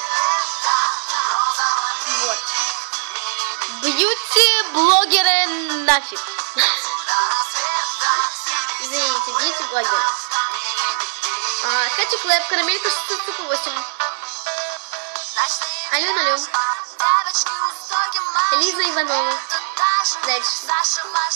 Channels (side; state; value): left; silent; 63 dB below the other